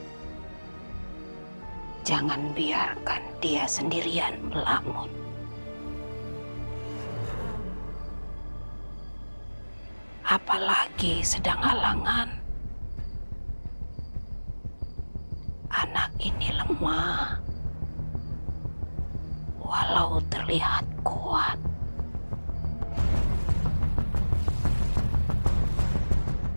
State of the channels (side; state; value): both; inverted; correlation -1.00